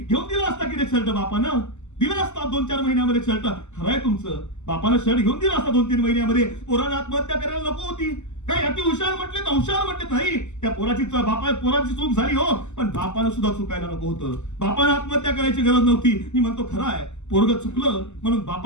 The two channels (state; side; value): late; right; 0.83 ms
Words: दिला असता की रे शर्ट बापानं, दिला असता 2-4 महिन्यामध्ये शर्ट. खरंय तुमचं, बापानं शर्ट घेऊन दिला असता 2-3 महिन्यामध्ये. पोरानं आत्महत्या करायला नको होती. काय अति हुशार म्हटले तर हुशार म्हटले नाही. त्या पोराची चूक झाली हो, पण बापानं सुद्धा चुकायला नको होतं. बापानं आत्महत्या करायची गरज नव्हती. मी म्हणतो खरं आहे, पोरग चुकलं म्हणून